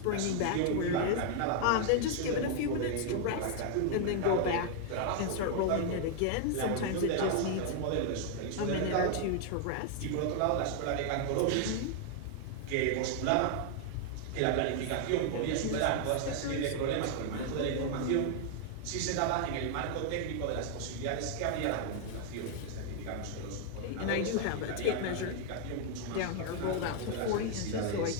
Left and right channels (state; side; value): different; both; correlation 0.00